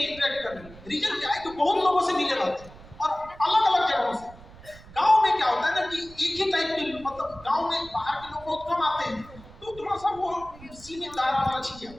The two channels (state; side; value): noise; right; rumble, 20 dB below the sound